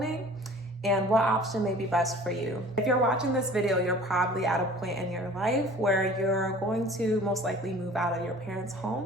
and what option may be best for you. If you're watching this video, you're probably at a point in your life where you're going to most likely move out of your parents'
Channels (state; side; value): normal; both; correlation 0.47